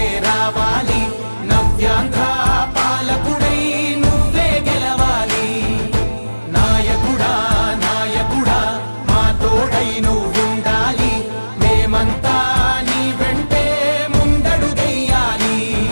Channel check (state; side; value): inverted; both; correlation -1.00